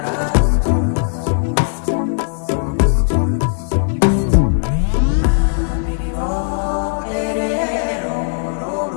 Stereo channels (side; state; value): right; silent; 66 dB below the other